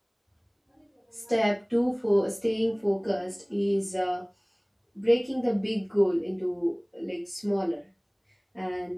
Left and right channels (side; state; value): both; identical; correlation 1.00